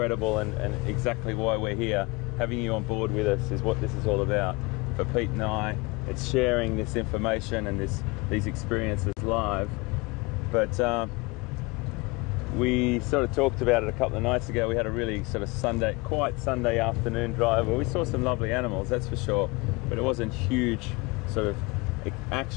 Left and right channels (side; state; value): right; quieter; 25.8 dB